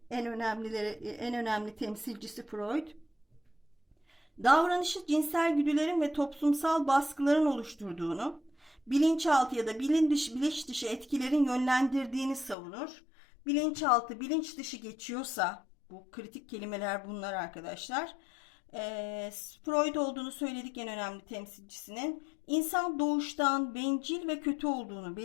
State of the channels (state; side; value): drops out; right; at 12.6 s